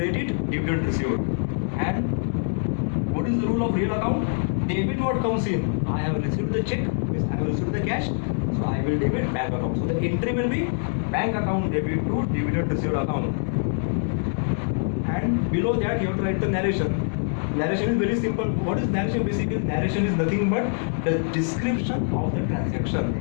dividend received. And what is the rule of real account? Debit what comes in. I have received the check, means I have received the cash, so I will debit bank account. So the entry will be bank account debit to dividend received account. And below that you have to write the narration. Narration is very simple. What is narration? Basically, narration is nothing but the description of the transaction.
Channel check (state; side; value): silent; right; digital silence